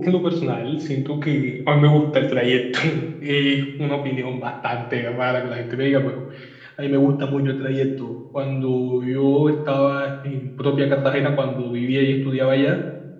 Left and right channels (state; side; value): identical; both; correlation 1.00